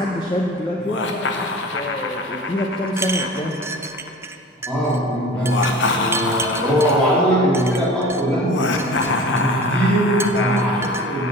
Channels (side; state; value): both; normal; correlation 0.39